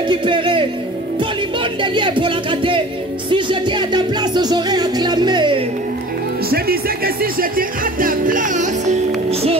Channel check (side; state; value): both; normal; correlation 0.43